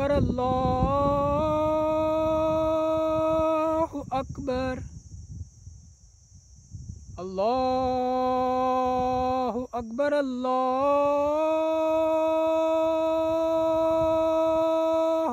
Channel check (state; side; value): identical; both; correlation 1.00